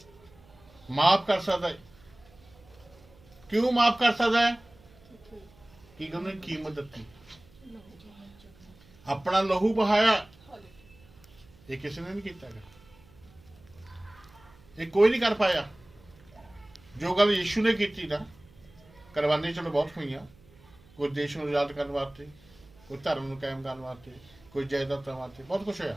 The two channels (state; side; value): noise; right; hum, 26 dB below the sound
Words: ਕਿਉਂ ਮਾਫ ਕਰ ਸਕਦਾ ਹੈ ਕਿ ਉਹਨੇ ਕੀਮਤ ਦਿੱਤੀ ਆਪਣਾ ਲਹੂ ਬਹਾਇਆ ਇਹ ਕਿਸੇ ਨੇ ਨਹੀਂ ਕੀਤਾ ਇਹ ਕੋਈ ਨਹੀਂ ਕਰ ਪਾਇਆ ਜੋ ਗੱਲ ਯਿਸੂ ਨੇ ਕੀਤੀ ਨਾ ਕੁਰਬਾਨੀ ਚਲੋ ਬਹੁਤ ਹੋਈਆਂ ਕੋਈ ਦੇਸ਼ ਨੂੰ ਆਜ਼ਾਦ ਕਰਨ ਵਾਸਤੇ ਕੋਈ ਧਰਮ ਨੂੰ ਕਾਇਮ ਕਰਨ ਵਾਸਤੇ ਕੋਈ ਜਾਇਦਾਦਾਂ ਵਾਸਤੇ ਬਹੁਤ ਕੁਛ ਹੋਇਆ